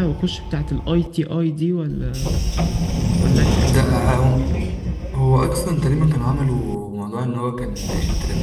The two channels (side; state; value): both; identical; correlation 1.00